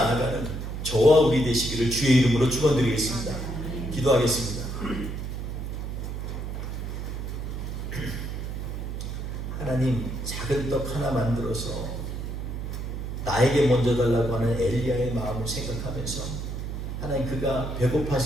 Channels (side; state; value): right; noise; hum, 5 dB below the sound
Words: 저와 우리 되시기를 주의 이름으로 축원드리겠습니다. 기도하겠습니다. 하나님 작은 떡 하나 만들어서 나에게 먼저 달라고 하는 엘리야의 마음을 생각하면서 하나님, 그가